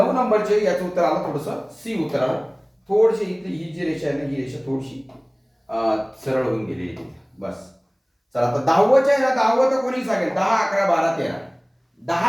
नंबरचे. याचं उत्तर आलं थोडंसं सी उत्तर आलं. थोडीशी इथली ही जी रेषा आहे ना, ही रेषा थोडीशी सरळ होऊन गेली आहे. बस. चला आता 10वच्या आहे ना, 10वं तर कोणी सांगेल? 10, 11, 12, 13.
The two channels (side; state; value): both; identical; correlation 1.00